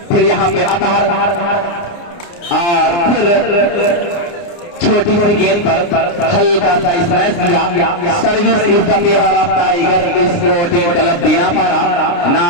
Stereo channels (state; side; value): late; right; 29 ms